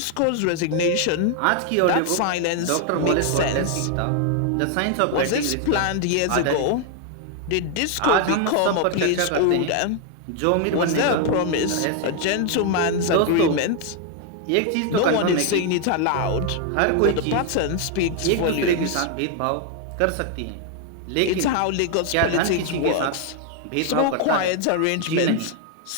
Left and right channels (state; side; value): different; both; correlation 0.00